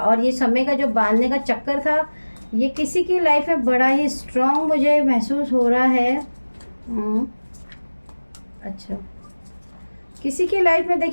ये समय का जो बांधने का चक्कर था ये किसी की लाइफ में बड़ा ही स्ट्रॉन्ग मुझे महसूस हो रहा है। अच्छा, किसी की लाइफ में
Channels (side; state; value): both; inverted; correlation -1.00